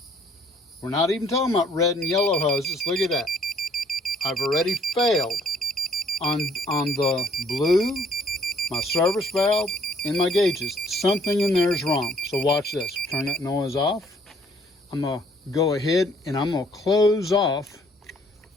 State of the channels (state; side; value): normal; both; correlation 0.62